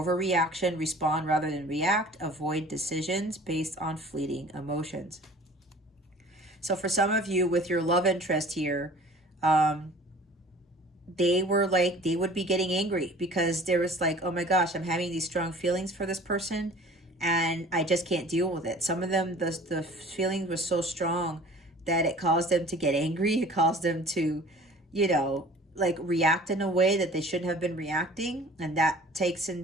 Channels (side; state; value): both; normal; correlation 0.47